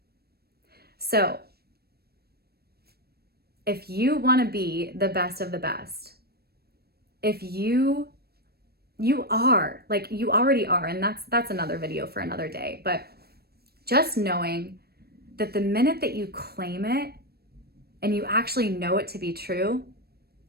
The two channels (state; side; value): late; left; 0.46 ms